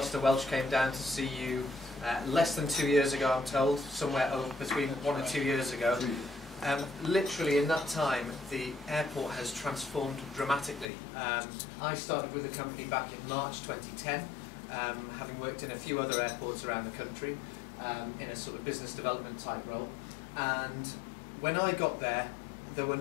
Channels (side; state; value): right; drops out; at 10.9 s